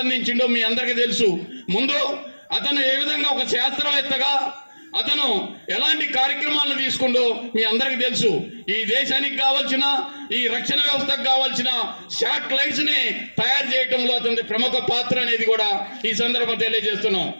అందించిండో మీ అందరికీ తెలుసు. ముందు అతను ఏ విధంగా ఒక శాస్త్రవేత్తగా అతను ఎలాంటి కార్యక్రమాలను తీసుకుండో మీ అందరికీ తెలుసు. ఈ దేశానికి కావాల్సిన, ఈ రక్షణ వ్యవస్థకు కావాల్సిన శాటిలైట్స్ ని తయారు చేయడంలో అతని ప్రముఖ పాత్ర అనేది కూడా ఈ సందర్భం తెలియజేస్తున్నాం.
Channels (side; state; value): both; inverted; correlation -1.00